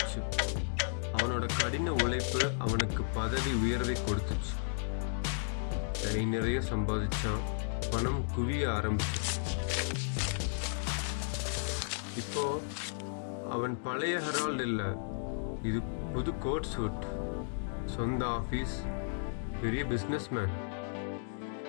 அவனோட கடின உழைப்பு அவனுக்கு பதவி உயர்வை கொடுத்துச்சு. கை நிறைய சம்பாதிச்சான். பணம் குவிய ஆரம்பிச்சிச்சு. இப்போ அவன் பழைய ஹெரால்டு இல்லை. இது புது கோட் சூட், சொந்த ஆஃபீஸ், பெரிய பிஸ்னஸ்மேன்.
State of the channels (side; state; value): right; silent; digital silence